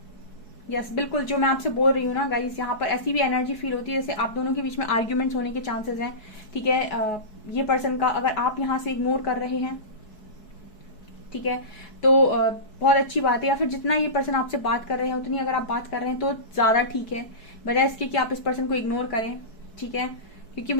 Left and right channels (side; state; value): right; late; 4.7 ms